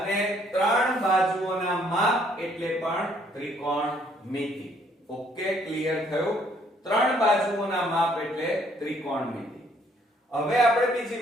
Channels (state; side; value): normal; both; correlation 0.65